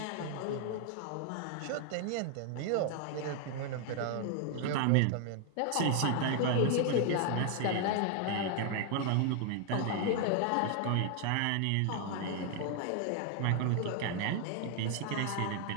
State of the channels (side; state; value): both; different; correlation 0.00